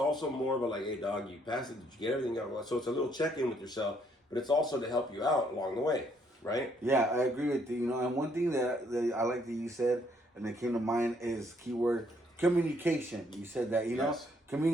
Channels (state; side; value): normal; both; correlation 0.69